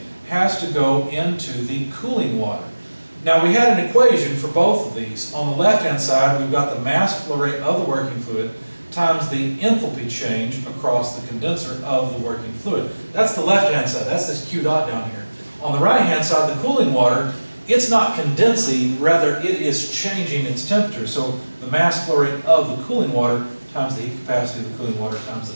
has to go into the cooling water. Now we had an equation for both of these. On the left-hand side, we've got the mass flow rate of the working fluid times the enthalpy change across the condenser of the working fluid. That's the left-hand side. That's this Q dot down here. On the right-hand side, the cooling water, it's not condensing, rather it is changing its temperature. So the mass flow rate of the cooling water times the heat capacity of the cooling water times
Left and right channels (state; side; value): inverted; both; correlation -1.00